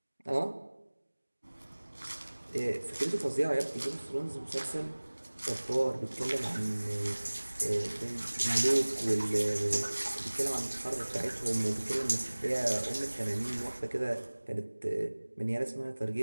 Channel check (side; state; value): both; inverted; correlation -1.00